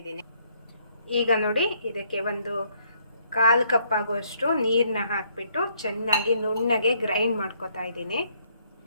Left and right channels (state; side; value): inverted; both; correlation -0.69